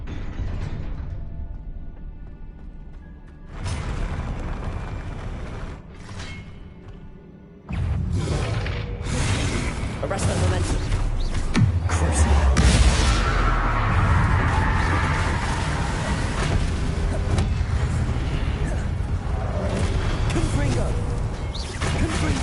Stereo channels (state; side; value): identical; both; correlation 1.00